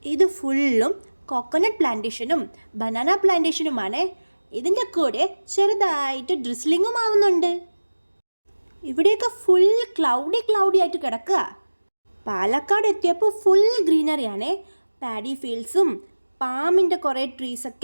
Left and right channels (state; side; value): inverted; both; correlation -1.00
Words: ഇത് ഫുള്ളും കോക്കനട്ട് പ്ലാന്റേഷനും ബനാന പ്ലാന്റേഷനുമാണ്. ഇതിൻ്റെ കൂടെ ചെറുതായിട്ട് ഡ്രിസ്ലിങ്ങും ആവുന്നുണ്ട്. ഇവിടെയൊക്കെ ഫുൾ ക്ലൗഡി ആയിട്ട് കിടക്കുക. പാലക്കാട് എത്തിയപ്പോൾ ഫുൾ ഗ്രീനറിയാണ്. പാഡി ഫീൽഡ്സും പാമിൻ്റെ കുറേ